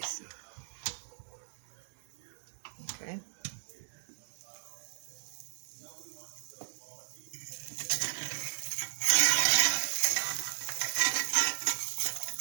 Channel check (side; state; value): left; silent; digital silence